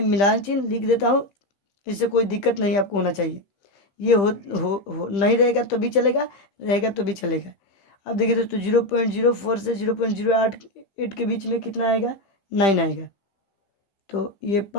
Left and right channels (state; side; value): late; right; 15 ms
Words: मिलान चिन्ह लिख देता हूँ, इससे कोई दिक्कत नहीं आपको होना चाहिए। ये हो नहीं रहेगा तो भी चलेगा, रहेगा तो भी चलेगा। अब देखिए दोस्तों 0.04 से 0.08 के बीच में कितना आएगा? 9 आएगा। तो ये